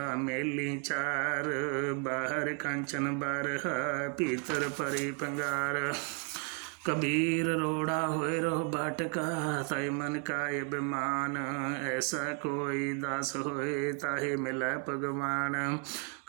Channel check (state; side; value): quieter; left; 36.3 dB